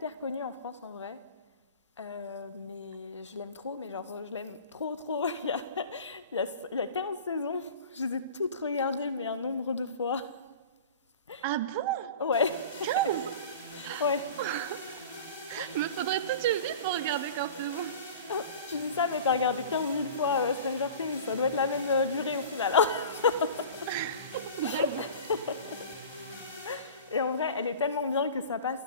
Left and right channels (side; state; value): both; inverted; correlation -0.38